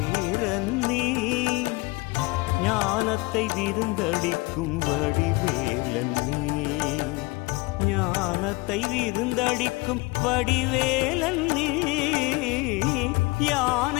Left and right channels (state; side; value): quieter; right; 24.5 dB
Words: நீ ஞானத்தை விருந்தளிக்கும் வடிவேலன் நீ ஞானத்தை விருந்தளிக்கும் வடிவேலன் நீ